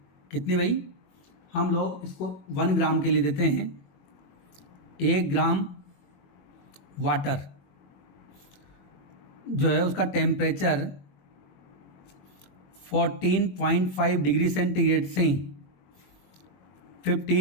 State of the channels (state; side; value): late; right; 21 ms